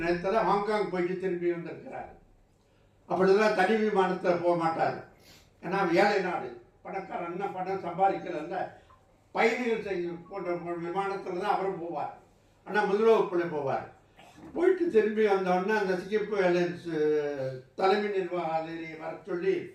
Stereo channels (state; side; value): identical; both; correlation 1.00